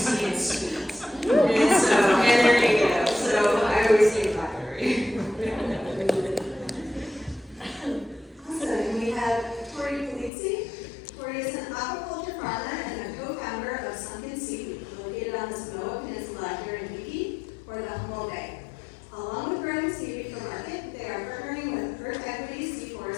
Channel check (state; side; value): drops out; right; at 10.3 s